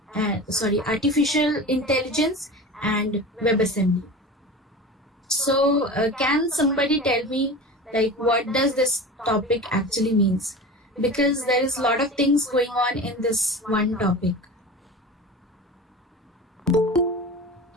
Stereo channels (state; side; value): normal; both; correlation 0.32